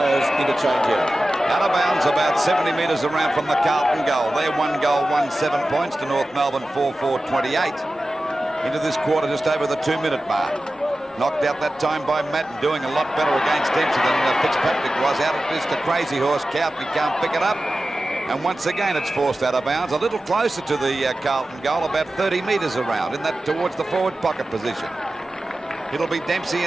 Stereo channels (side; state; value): both; normal; correlation 0.95